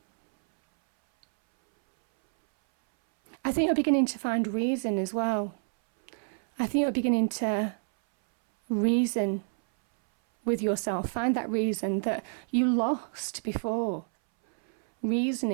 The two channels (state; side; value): silent; left; 59 dB below the other